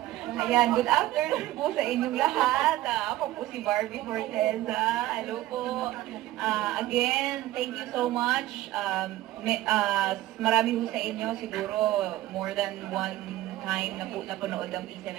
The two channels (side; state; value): left; quieter; 16.0 dB